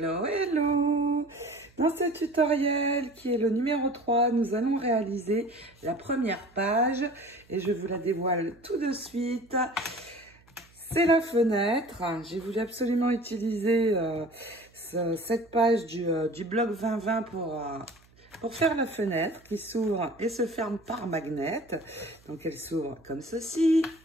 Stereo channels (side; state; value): right; noise; hum, 29 dB below the sound